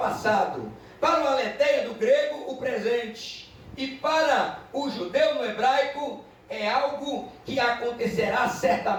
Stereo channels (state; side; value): identical; both; correlation 1.00